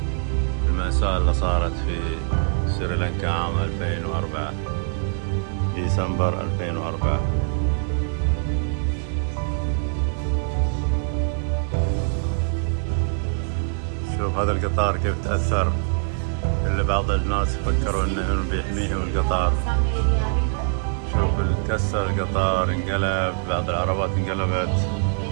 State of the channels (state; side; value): silent; left; digital silence